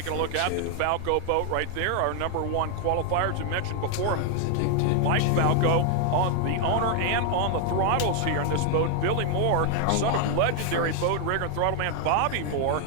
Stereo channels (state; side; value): different; both; correlation 0.00